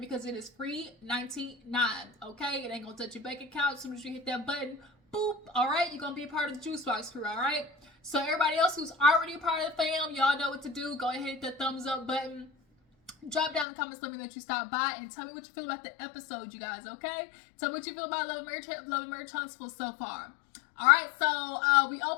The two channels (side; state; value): right; drops out; at 13.7 s